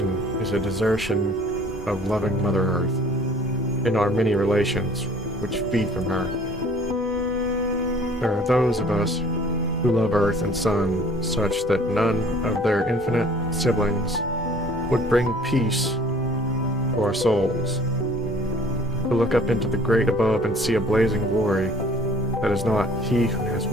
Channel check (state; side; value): normal; both; correlation 0.53